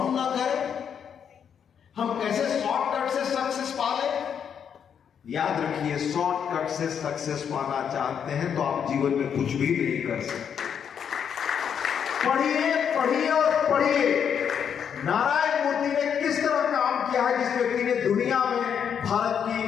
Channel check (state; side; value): quieter; right; 7.8 dB